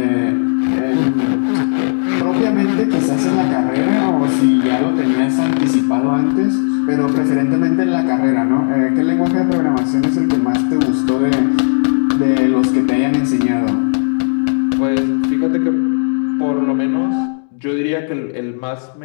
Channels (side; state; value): right; silent; digital silence